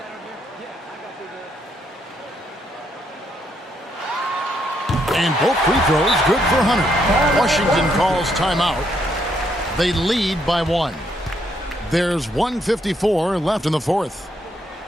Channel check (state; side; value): normal; both; correlation 0.74